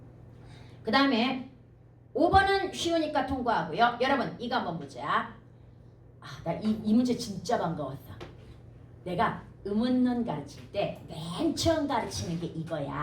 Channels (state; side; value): identical; both; correlation 1.00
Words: 그 다음에 5번은 쉬우니까 통과하고요. 여러분 이거 한번 보자. 나 이 문제 진짜 반가웠어. 내가 의문문 가르칠 때 맨 처음 가르치는 게